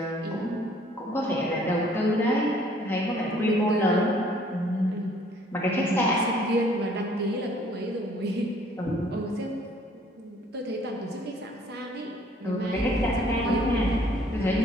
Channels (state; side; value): normal; both; correlation 0.59